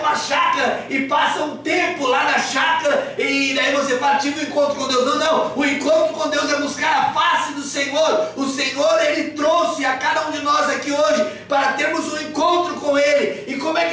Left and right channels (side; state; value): both; identical; correlation 1.00